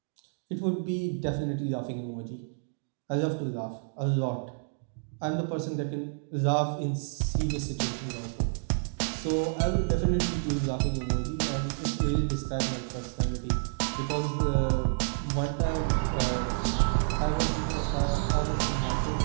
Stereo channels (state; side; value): silent; left; digital silence